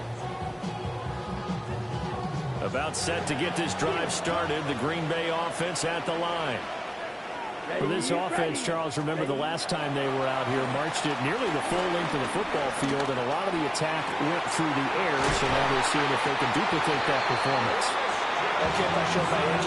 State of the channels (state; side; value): identical; both; correlation 1.00